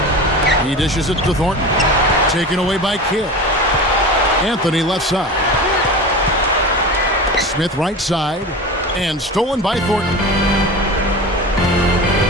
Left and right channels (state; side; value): normal; both; correlation 0.30